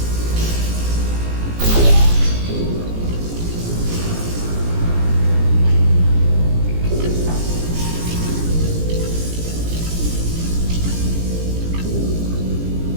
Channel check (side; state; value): left; late; 17 ms